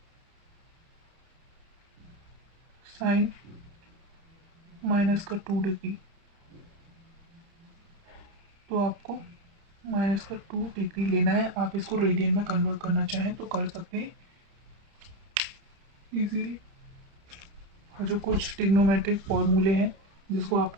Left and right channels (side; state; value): left; late; 30 ms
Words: साइन -2 डिग्री, तो आपको -2 डिग्री लेना है। आप इसको रेडियन में कन्वर्ट करना चाहें तो कर सकते हैं इजीली। जो कुछ ट्रिग्नोमेट्रिक फॉर्मूले हैं जिसको